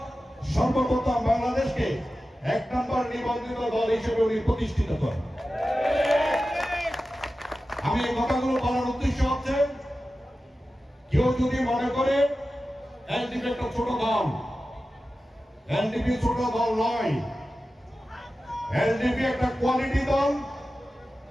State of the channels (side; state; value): both; normal; correlation 0.94